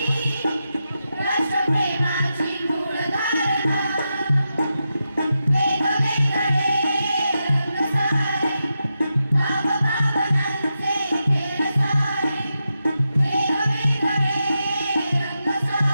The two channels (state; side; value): inverted; both; correlation -0.88